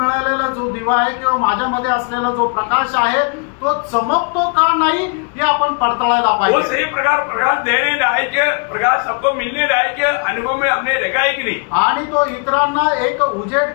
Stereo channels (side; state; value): right; quieter; 37.7 dB